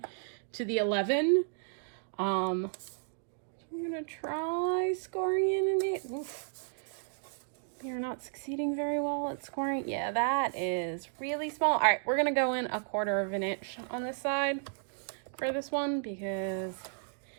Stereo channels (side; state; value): left; silent; digital silence